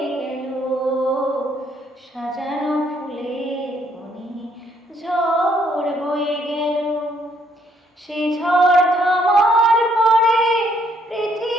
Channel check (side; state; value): both; normal; correlation 0.69